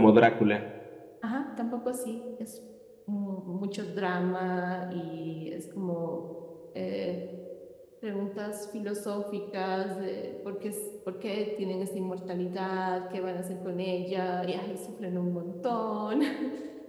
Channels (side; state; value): both; identical; correlation 1.00